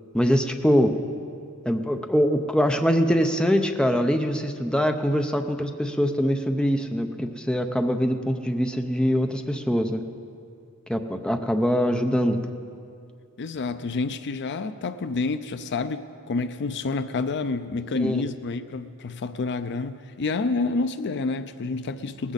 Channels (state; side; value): normal; both; correlation 0.78